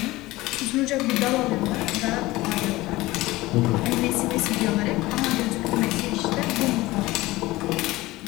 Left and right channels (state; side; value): quieter; right; 19.0 dB